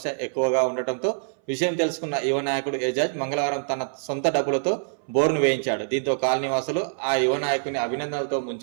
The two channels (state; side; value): silent; left; 59 dB below the other